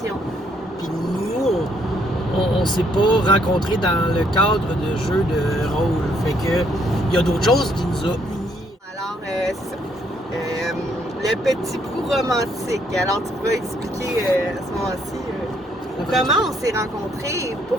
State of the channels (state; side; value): normal; both; correlation 0.70